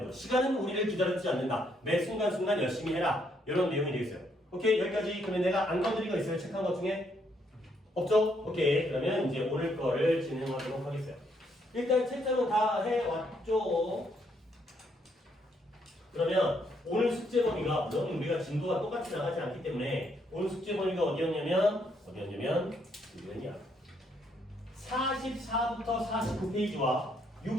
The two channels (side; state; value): both; normal; correlation 0.72